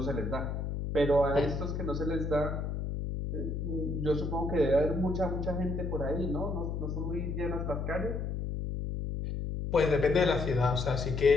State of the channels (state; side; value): noise; left; hum, 3 dB below the sound